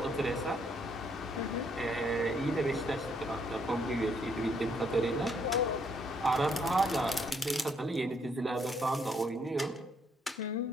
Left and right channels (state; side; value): normal; both; correlation 0.71